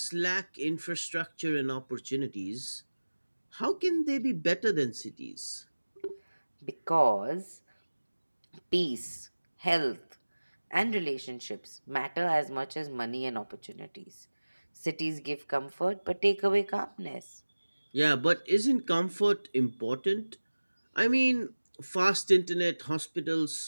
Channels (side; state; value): both; inverted; correlation -1.00